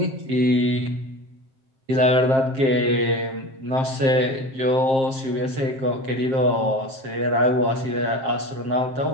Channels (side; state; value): left; late; 7.5 ms